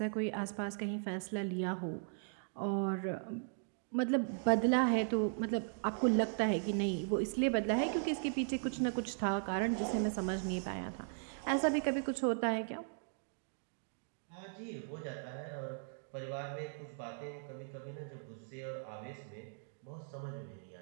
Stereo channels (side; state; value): left; silent; digital silence